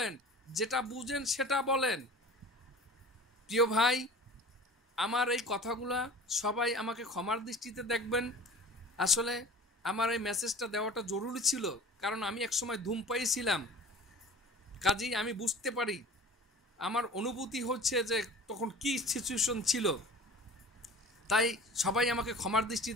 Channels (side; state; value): both; normal; correlation 0.40